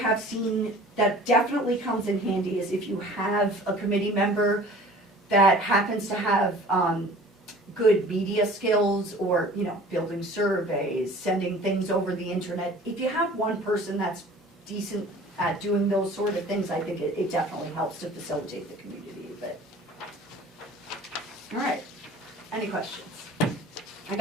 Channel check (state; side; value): normal; both; correlation 0.46